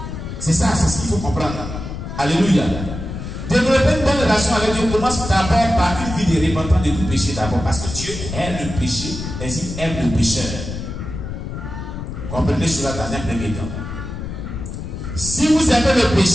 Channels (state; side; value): noise; left; rumble, 7 dB below the sound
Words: C'est ça, c'est ce qu'il faut comprendre. Alléluia. Développer une bonne relation avec Dieu commence d'abord par une vie de repentance de tout péché d'abord. Parce que Dieu aime le péché, et il aime le pécheur. Comprenez cela dans un premier temps. Si vous aimez le